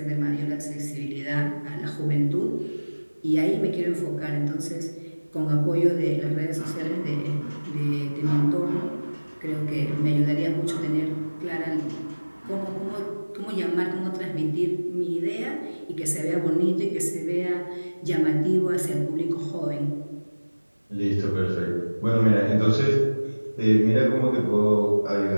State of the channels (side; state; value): both; inverted; correlation -1.00